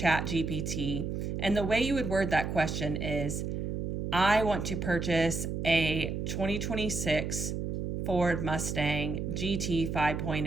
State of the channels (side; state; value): right; noise; hum, 3 dB below the sound